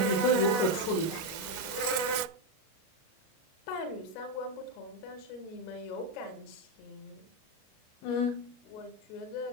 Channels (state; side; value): late; right; 37 ms